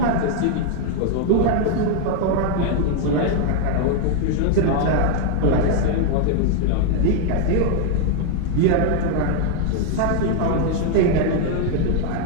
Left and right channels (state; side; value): different; both; correlation 0.01